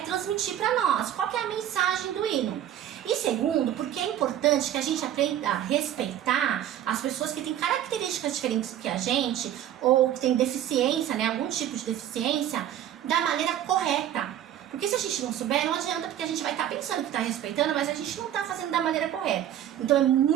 transmitir para nós, qual que é a mensagem do hino. E segundo, porque é importante que a gente aprenda a respeitar as pessoas que têm características diferentes que a gente, ou que têm deficiência, né, algum tipo de deficiência, da maneira correta. Porque se a gente não souber, não adianta, porque a gente vai estar pensando que está respeitando, mas a gente não está fazendo da maneira correta. Então é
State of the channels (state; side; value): quieter; left; 11.1 dB